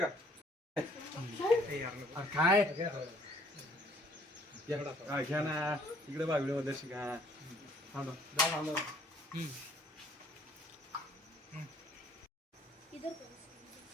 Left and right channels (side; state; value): both; normal; correlation 0.61